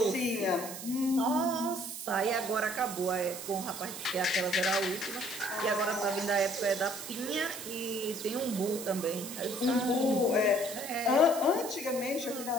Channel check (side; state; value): right; noise; hiss, 10 dB below the sound